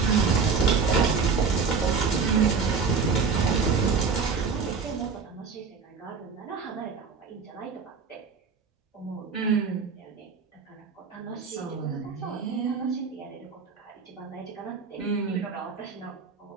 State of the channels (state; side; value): quieter; left; 5.4 dB